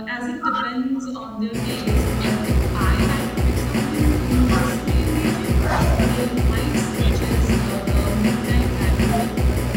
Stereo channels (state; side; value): identical; both; correlation 1.00